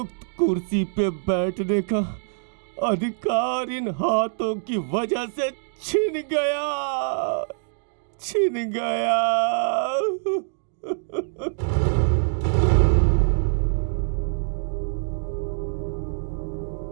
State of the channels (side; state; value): left; silent; digital silence